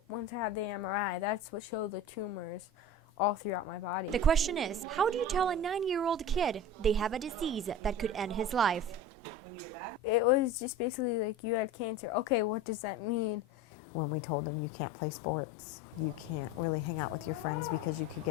once I had the MRI, that's what showed the tumors all throughout my body. The question is, how do you tell a 9-year-old kid they have a disease that could end his life? It was just basically like, you had cancer. Okay, what does that mean? When we told him you can't play sports, you can't really hang out with your friends because you could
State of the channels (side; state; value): both; normal; correlation 0.33